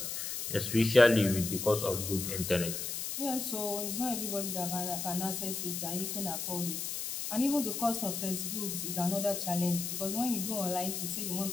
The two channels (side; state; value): left; noise; hiss, 4 dB below the sound